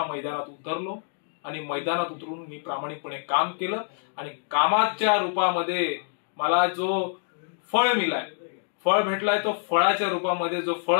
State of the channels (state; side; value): silent; right; 58 dB below the other